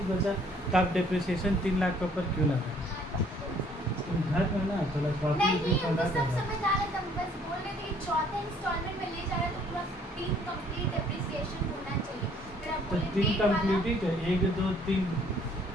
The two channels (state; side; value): normal; both; correlation 0.61